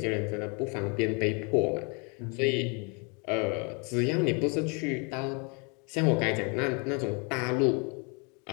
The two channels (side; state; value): right; quieter; 33.5 dB